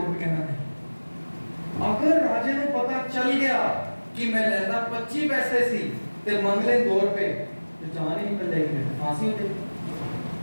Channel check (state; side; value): inverted; both; correlation -1.00